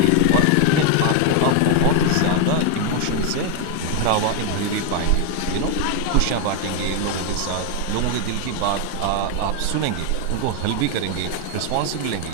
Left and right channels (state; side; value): different; both; correlation 0.01